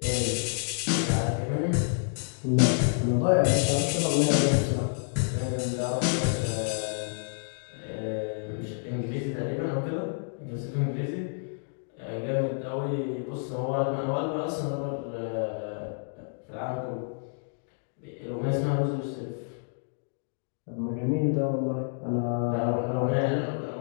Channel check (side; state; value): right; silent; digital silence